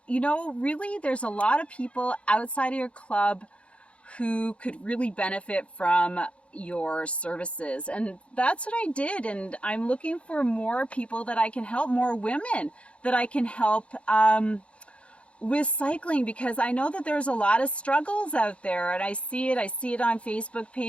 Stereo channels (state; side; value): late; right; 0.061 ms